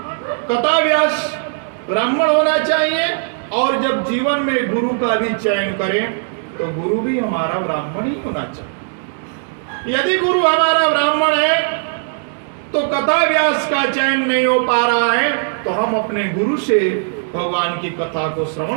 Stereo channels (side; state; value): left; silent; digital silence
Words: कथा व्यास ब्राह्मण होना चाहिए। और जब जीवन में गुरु का भी चयन करें तो गुरु भी हमारा ब्राह्मण ही होना चाहिए। यदि गुरु हमारा ब्राह्मण है तो कथा व्यास का चयन नहीं हो पा रहा है, तो हम अपने गुरु से भगवान की कथा को